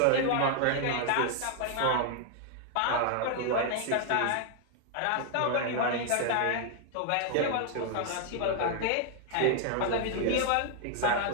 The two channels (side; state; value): both; different; correlation 0.00